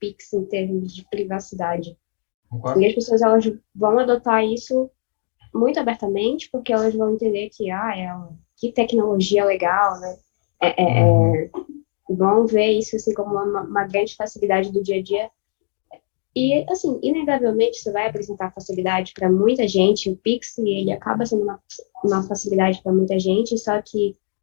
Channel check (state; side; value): silent; right; digital silence